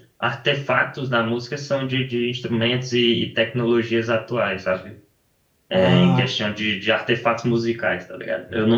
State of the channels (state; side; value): identical; both; correlation 1.00